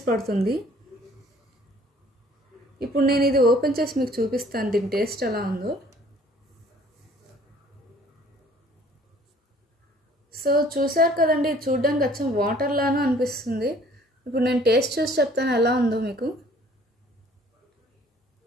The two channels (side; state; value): both; normal; correlation 0.55